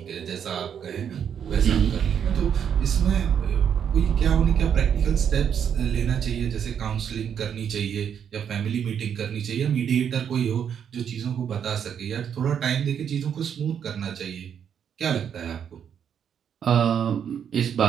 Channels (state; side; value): quieter; left; 8.2 dB